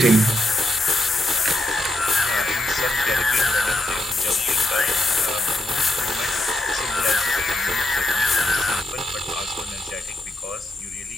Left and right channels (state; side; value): normal; both; correlation 0.82